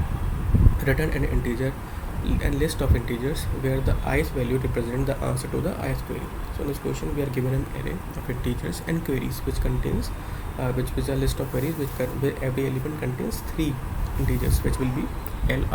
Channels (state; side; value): identical; both; correlation 1.00